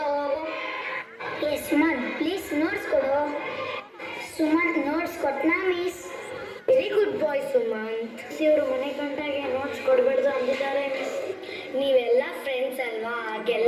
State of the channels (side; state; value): both; identical; correlation 1.00